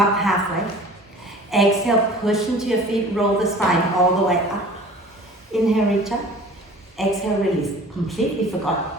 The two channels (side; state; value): both; normal; correlation 0.44